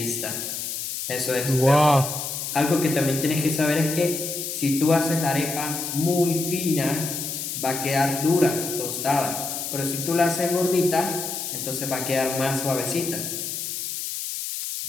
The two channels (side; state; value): left; noise; hiss, 5 dB below the sound